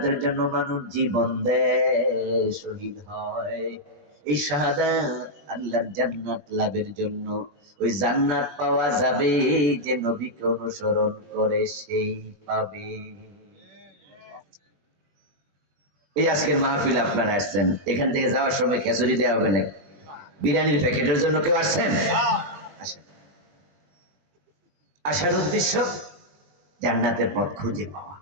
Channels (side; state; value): left; late; 20 ms